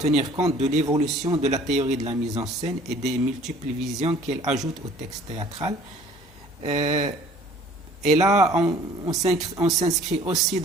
compte de l'évolution de la théorie de la mise en scène et des multiples visions qu'elle ajoute au texte théâtral. Et là, on s'inscrit aussi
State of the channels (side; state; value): both; normal; correlation 0.53